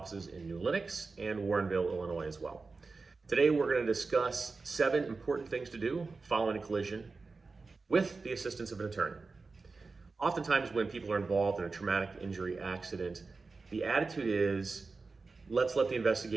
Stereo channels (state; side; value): quieter; left; 4.1 dB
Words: in New Lenox and Warrenville, Illinois as well. Today we're going to discuss 7 important things to do following a collision with the assistance of an attorney. Oftentimes when people are involved in a traumatic injury accident, the attitude is, let's let the